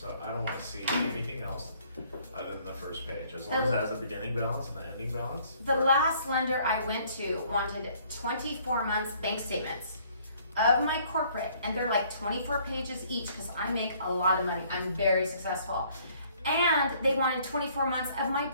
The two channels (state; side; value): inverted; both; correlation -0.61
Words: I don't want to see anything else other than the first page, as long as it has a beginning balance and the ending balance. The last lender I went to wanted 24 months bank statements of my corporate, and they're like 24 pages each because I make a lot of money. I'm very successful. And they wanted 24 months of my